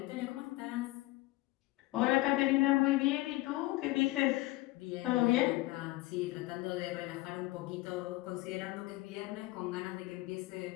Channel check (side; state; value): right; quieter; 19.8 dB